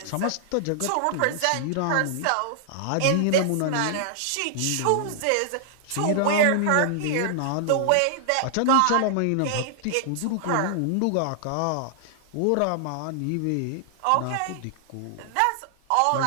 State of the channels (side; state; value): both; different; correlation -0.01